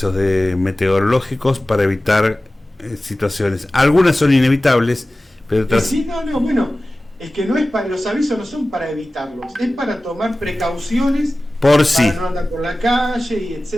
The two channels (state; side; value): normal; both; correlation 0.96